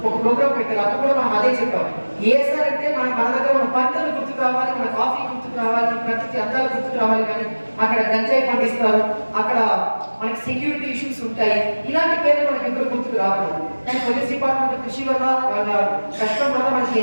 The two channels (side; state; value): both; inverted; correlation -1.00